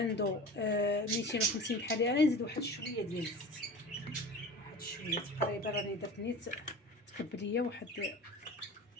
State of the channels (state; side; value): normal; both; correlation 0.35